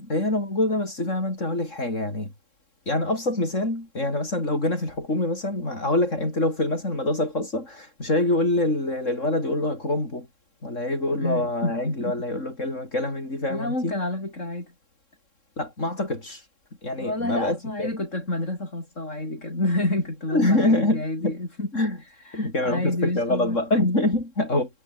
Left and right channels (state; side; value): late; right; 3.7 ms